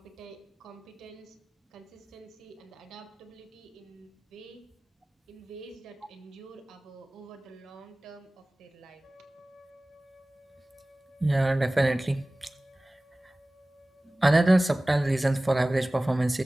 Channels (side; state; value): both; normal; correlation 0.98